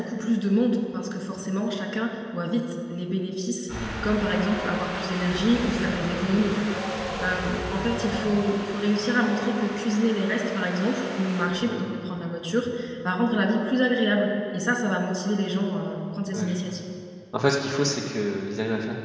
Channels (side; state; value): both; identical; correlation 1.00